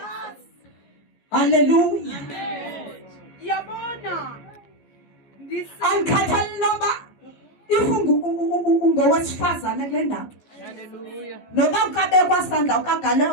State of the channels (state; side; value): late; right; 14 ms